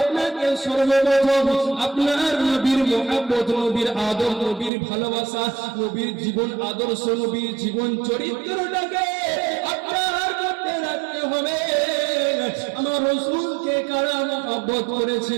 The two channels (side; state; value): left; drops out; at 4.7 s